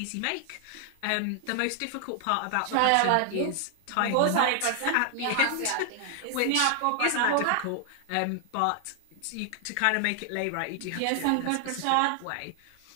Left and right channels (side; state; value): both; different; correlation 0.00